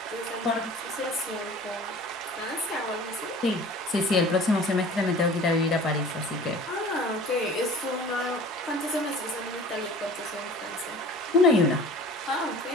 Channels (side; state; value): both; normal; correlation 0.44